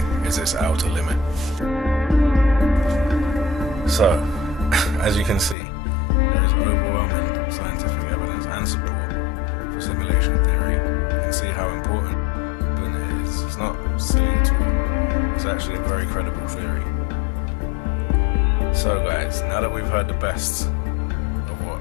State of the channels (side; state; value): right; drops out; at 5.6 s